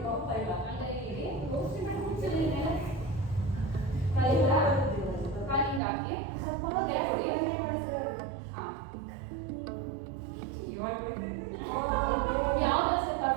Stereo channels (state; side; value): drops out; left; at 5.8 s